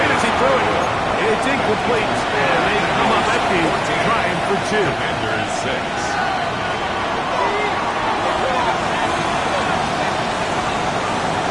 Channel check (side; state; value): both; identical; correlation 1.00